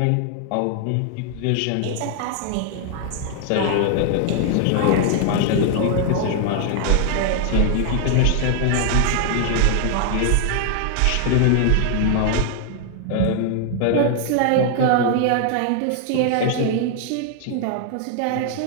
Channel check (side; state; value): both; different; correlation 0.00